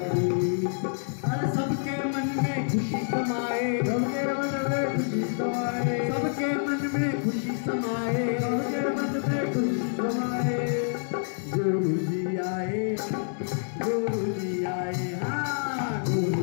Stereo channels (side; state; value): right; silent; 60 dB below the other